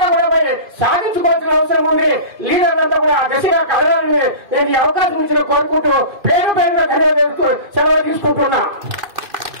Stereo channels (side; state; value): left; late; 2.5 ms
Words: కూడా పోయి సాధించుకోవాల్సిన అవసరం ఉంది. లీడర్లంతా కూడా దశగా కలగాలని నేను ఈ అవకాశం ఇచ్చిన కోరుకుంటూ పేరు పేరుగా ధన్యవాదాలు సెలవు తీసుకుంటున్నా.